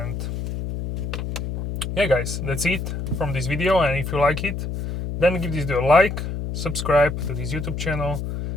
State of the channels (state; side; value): noise; left; hum, 4 dB below the sound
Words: yeah guys, that's it from this video, and if you like it, then give this video a like, subscribe to this YouTube channel,